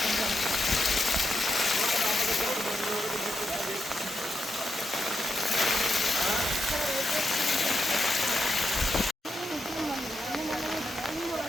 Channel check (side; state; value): both; normal; correlation 0.84